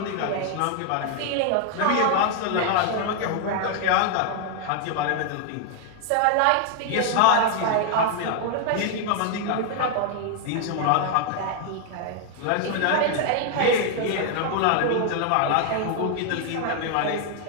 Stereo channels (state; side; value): different; both; correlation 0.00